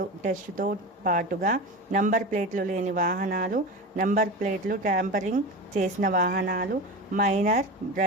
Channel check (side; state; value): both; normal; correlation 0.26